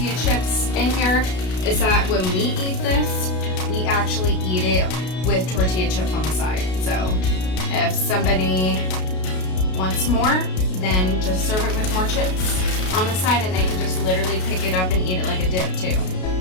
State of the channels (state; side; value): late; right; 33 ms